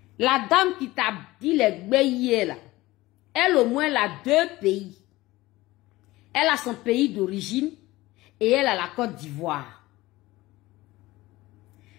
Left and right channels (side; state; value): right; quieter; 18.8 dB